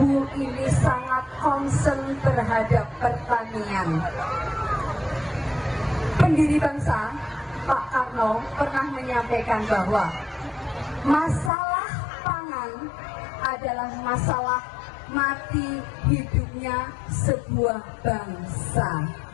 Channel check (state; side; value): drops out; right; at 11.5 s